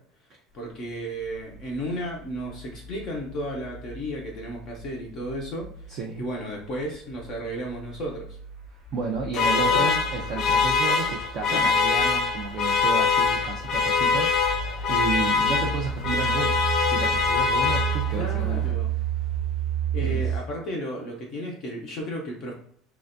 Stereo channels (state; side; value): normal; both; correlation 0.39